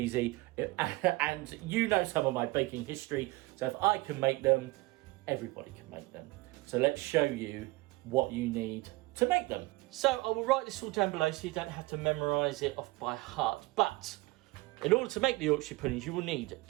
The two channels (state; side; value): quieter; left; 21.9 dB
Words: and you know some of my baking history, so if I can make them, everybody can make them. So let's show you what you need to make them. So I will write this all down below so you don't have to memorize it off by heart, but in order to make the Yorkshire puddings, you will need